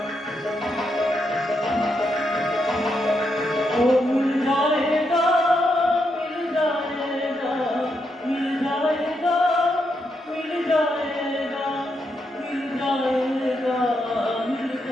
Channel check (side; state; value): both; normal; correlation 0.81